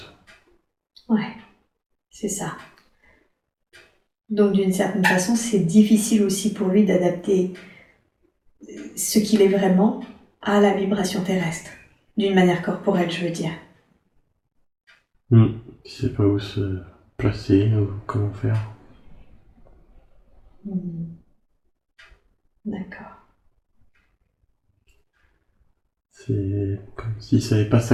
Ouais, c'est ça. Donc d'une certaine façon, c'est difficile aussi pour lui d'adapter ce qu'il est vraiment à la vibration terrestre, d'une manière corporelle, je veux dire. Il sait pas où se placer ou comment faire. D'accord. C'est comme s'il savait pas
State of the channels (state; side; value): identical; both; correlation 1.00